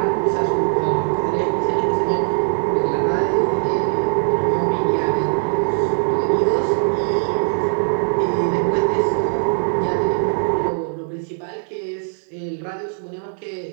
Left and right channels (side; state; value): left; silent; digital silence